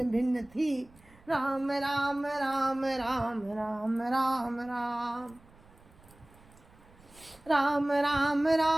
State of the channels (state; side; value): noise; right; rumble, 26 dB below the sound